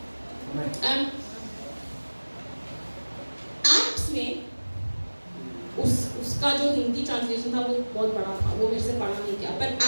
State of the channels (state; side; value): inverted; both; correlation -1.00